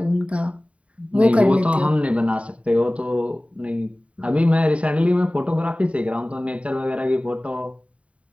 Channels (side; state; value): left; late; 0.064 ms